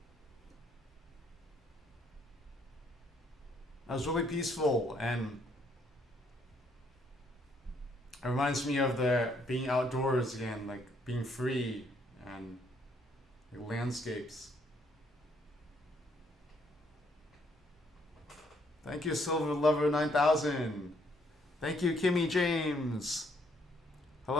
That was really peaceful, and it reminds me of the being outdoors again, like being free and like landscapes. Thank you, Silver Lover 9000. Thank you, Kimmy James.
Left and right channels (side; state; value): both; normal; correlation 0.69